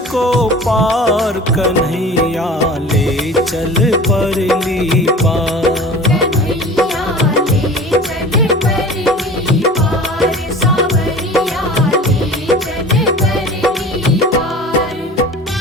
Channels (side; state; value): both; normal; correlation 0.40